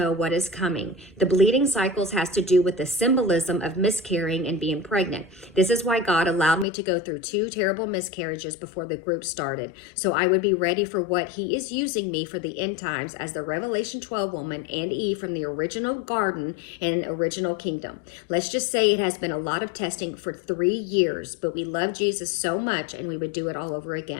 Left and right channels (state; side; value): drops out; right; at 6.7 s